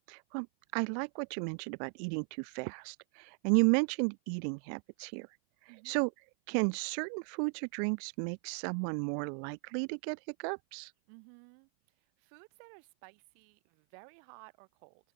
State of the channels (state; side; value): silent; left; 54 dB below the other